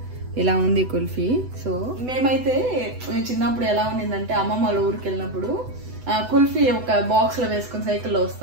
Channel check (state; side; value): late; left; 8.0 ms